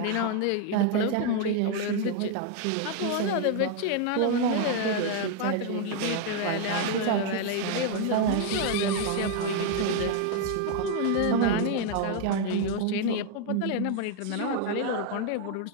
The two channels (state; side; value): different; both; correlation 0.00